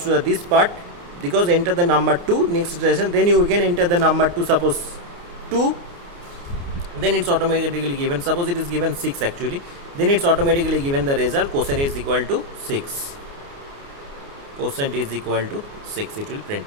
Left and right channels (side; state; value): left; late; 29 ms